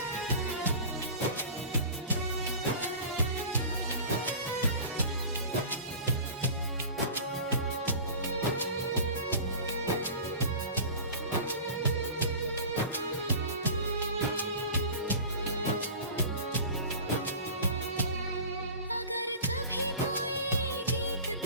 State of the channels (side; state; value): both; inverted; correlation -0.37